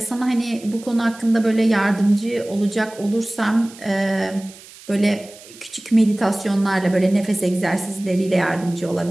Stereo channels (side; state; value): right; noise; hiss, 20 dB below the sound